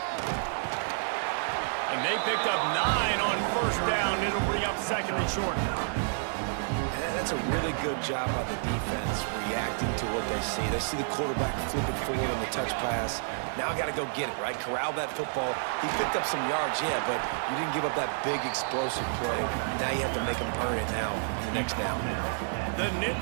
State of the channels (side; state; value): left; silent; digital silence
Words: And they picked up 9 on first down. It'll bring up second and short. That's a really good job by the defense, reacting to what they see. They see the quarterback flipping forward on the touch pass. Now I got to go get it, right? Corral that football. He picked up some yards, yeah, but you didn't give up that big explosive play. Now you have to make him earn it now on the next down. The